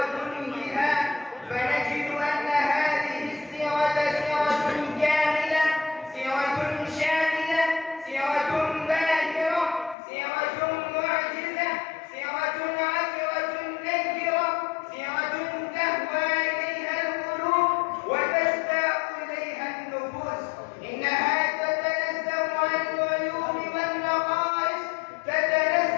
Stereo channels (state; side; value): drops out; right; at 10.0 s